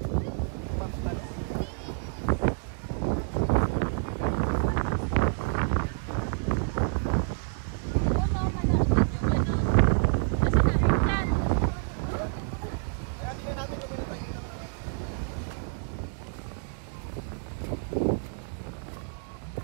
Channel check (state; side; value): silent; left; 55 dB below the other